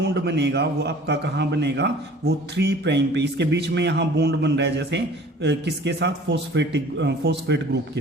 बनेगा वो आपका कहाँ बनेगा, वो 3 प्राइम पे। इसके बीच में यहाँ बॉन्ड बन रहा है जैसे किसके साथ, फॉस्फेट ग्रुप के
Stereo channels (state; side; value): normal; both; correlation 0.48